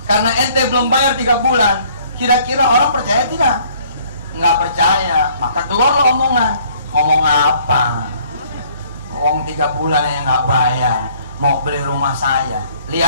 Karena ente belum bayar 3 bulan, kira-kira orang percaya tidak? Nggak percaya. Maka keluarlah omongan. Ngomong apa? Uang 3 bulan yang nggak bayar, mau beli rumah saya.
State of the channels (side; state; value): both; inverted; correlation -0.59